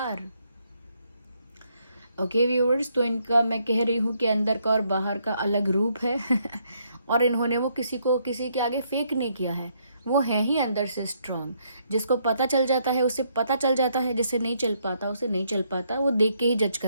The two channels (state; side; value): inverted; both; correlation -0.73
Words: Okay viewers, तो इनका मैं कह रही हूँ कि अंदर का और बाहर का अलग रूप है और इन्होंने वो किसी के आगे फेक नहीं किया है, वो है ही अंदर से स्ट्रांग। जिसको पता चल जाता है उसे पता चल जाता है, जिसे नहीं चल पाता उसे नहीं चल पाता, वो देख के ही जज